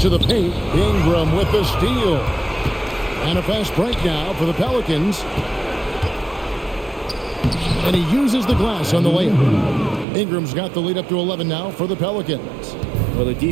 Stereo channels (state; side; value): drops out; left; at 10.1 s